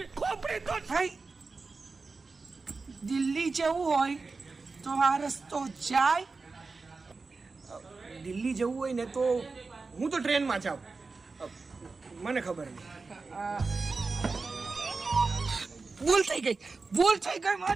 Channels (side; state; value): left; quieter; 4.1 dB